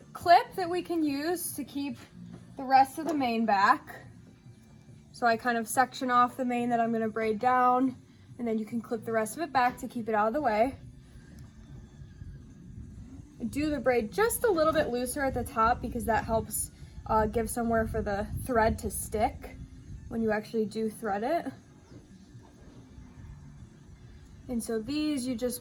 clip that we can use to keep the rest of the mane back. So I kind of section off the mane that I'm going to braid down, and then you can clip the rest of it back to keep it out of the way. Do the braid just a little bit looser at the top because that helps give somewhere for the thread to stick when you actually do thread it. And so these you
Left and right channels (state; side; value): identical; both; correlation 1.00